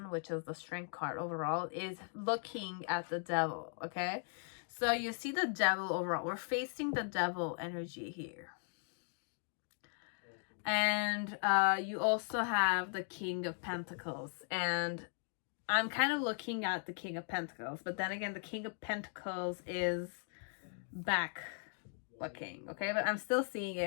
which is the strength card overall, is looking at the devil, okay? So you see the devil overall. We're facing the devil energy here. And you also have the King of Pentacles. And I'm kind of looking at the King of Pentacles. But then again, the King of Pentacles is back looking, okay? But I'm still seeing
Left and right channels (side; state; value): right; silent; 52 dB below the other